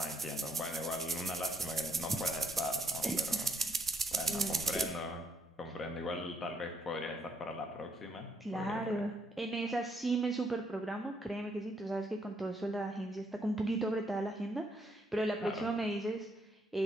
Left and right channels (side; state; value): both; normal; correlation 0.73